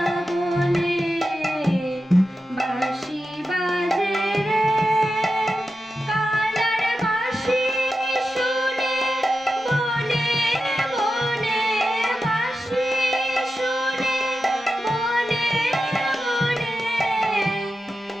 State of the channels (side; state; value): both; normal; correlation 0.91